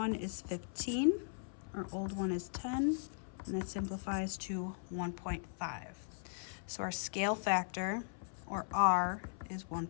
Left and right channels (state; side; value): silent; right; 52 dB below the other